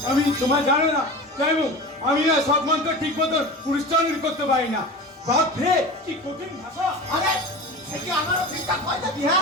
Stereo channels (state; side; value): normal; both; correlation 0.32